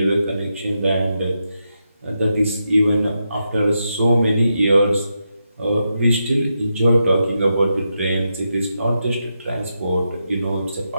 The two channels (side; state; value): both; inverted; correlation -0.86